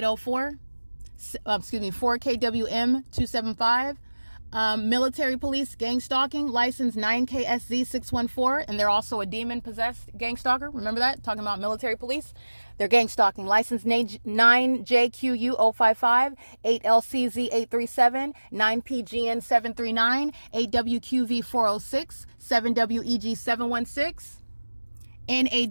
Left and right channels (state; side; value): inverted; both; correlation -1.00